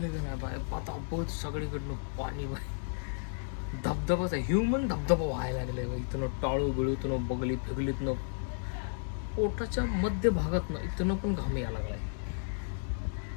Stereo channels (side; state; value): right; silent; digital silence